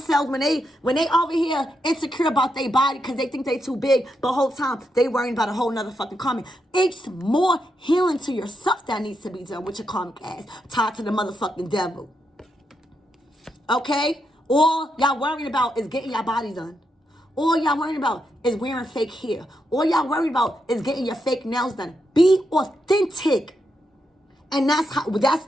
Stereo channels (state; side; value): normal; both; correlation 0.83